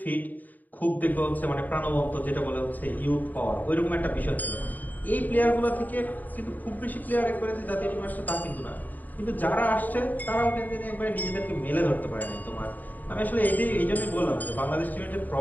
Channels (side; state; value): right; late; 0.084 ms